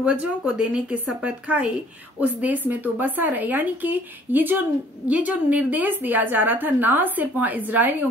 को देने की शपथ खाई, उस देश में तो बसा रहे। यानी कि ये जो निर्देश दिया जा रहा था ना सिर्फ वहां इजरायलियों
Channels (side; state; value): both; normal; correlation 0.57